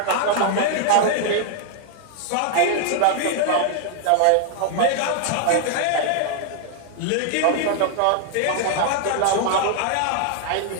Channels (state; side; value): different; both; correlation 0.00